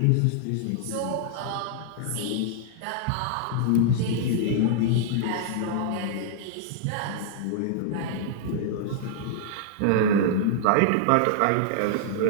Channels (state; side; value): different; both; correlation -0.01